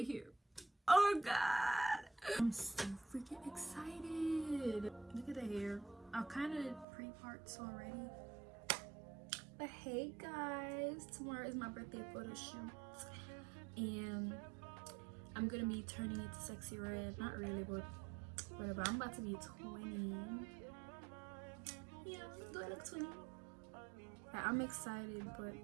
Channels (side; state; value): left; drops out; at 6.9 s